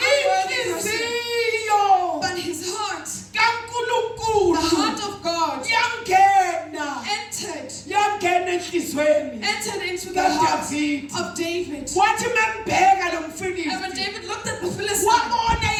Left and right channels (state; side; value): identical; both; correlation 1.00